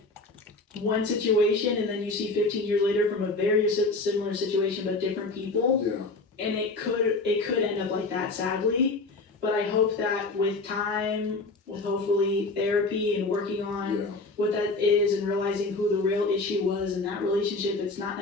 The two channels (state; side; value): quieter; right; 3.4 dB